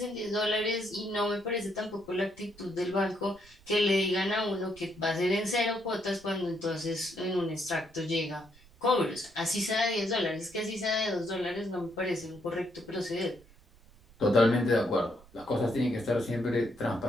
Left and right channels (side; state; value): right; noise; rumble, 26 dB below the sound